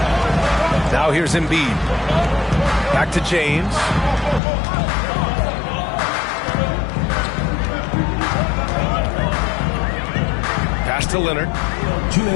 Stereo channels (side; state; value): right; drops out; at 4.4 s